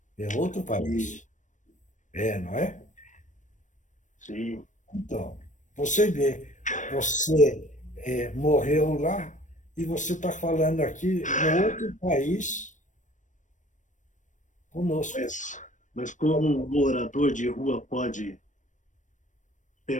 É outro país. Não é? Sim. Então, você vê, você morreu lá e você está falando aqui no outro país conosco. Mas como um morador de rua pode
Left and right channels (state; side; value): late; right; 0.36 ms